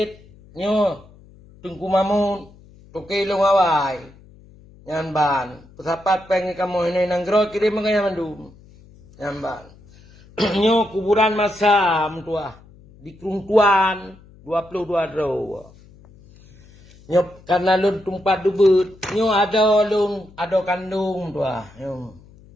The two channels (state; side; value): noise; left; hum, 25 dB below the sound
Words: nyo Tengku Mamun, Toke Long Awai, yang ban, pesapat pengen kamu ini nanggro kirim mengaya mandum, yang ban, nyo kuburan masam tua di Kerungtuan 22 draw. Nyo karena lun tumpat dubut, nyo ada lun ada kandung tua, nyo